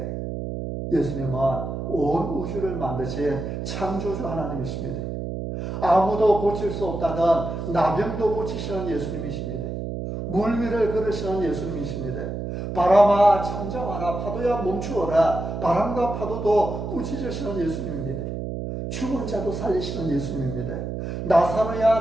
예수님은 온 우주를 만드신 창조주 하나님이십니다. 아무도 고칠 수 없다던 나병도 고치시는 예수님이십니다. 물 위를 걸으시는 예수님이십니다. 바람아 잠잠하라, 파도야 멈추어라, 바람과 파도도 꾸짖으시는 예수님입니다. 죽은 자도 살리시는 예수님입니다. 나사로야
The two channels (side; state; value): right; noise; hum, 5 dB below the sound